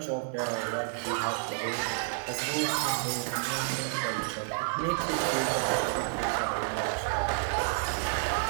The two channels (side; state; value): left; silent; digital silence